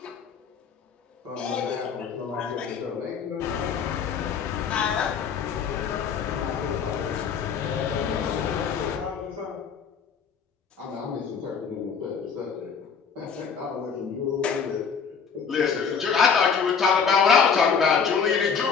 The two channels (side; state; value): right; quieter; 6.3 dB